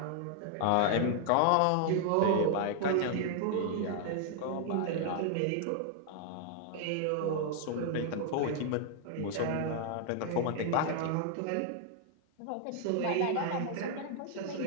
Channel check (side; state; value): both; different; correlation 0.00